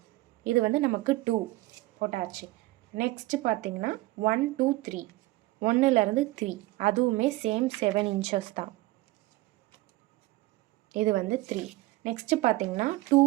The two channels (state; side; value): quieter; left; 19.1 dB